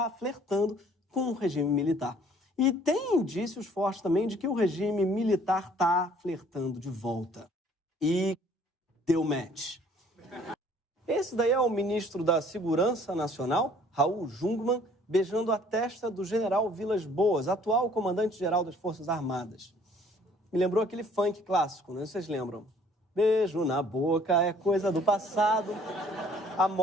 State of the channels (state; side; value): normal; both; correlation 0.57